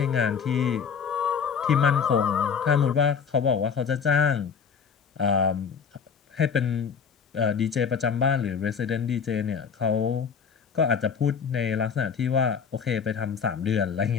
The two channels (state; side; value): quieter; right; 6.5 dB